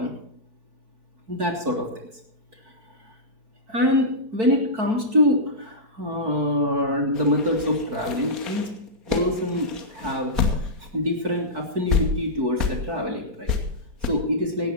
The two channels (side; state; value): left; late; 4.5 ms